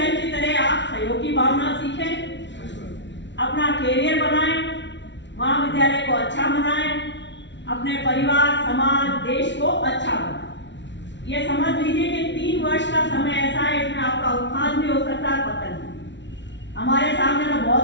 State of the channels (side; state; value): right; late; 0.52 ms